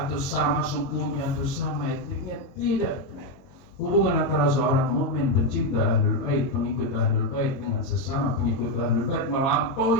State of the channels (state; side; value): late; right; 22 ms